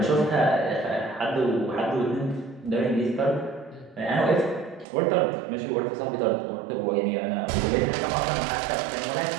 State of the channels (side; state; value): left; drops out; at 4.9 s